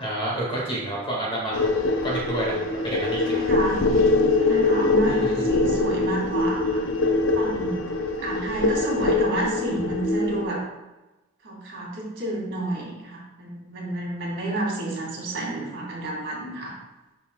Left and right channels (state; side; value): normal; both; correlation 0.23